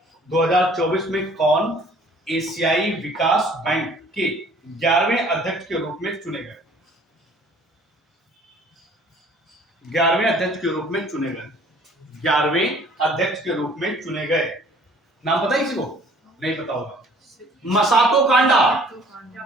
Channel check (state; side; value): normal; both; correlation 0.54